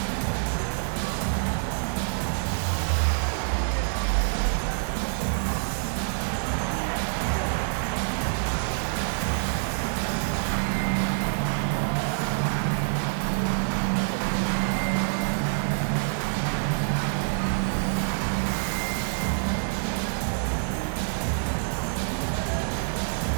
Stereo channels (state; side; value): silent; left; digital silence